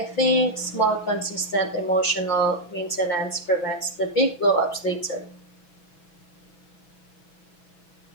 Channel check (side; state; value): right; late; 6.1 ms